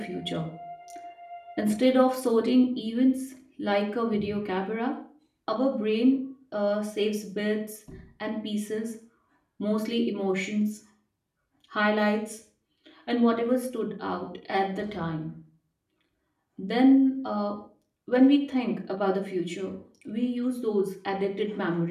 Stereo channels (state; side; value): identical; both; correlation 1.00